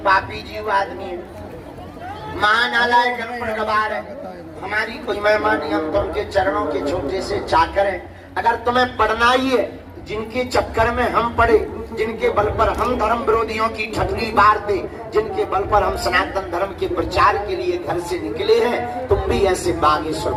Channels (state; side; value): identical; both; correlation 1.00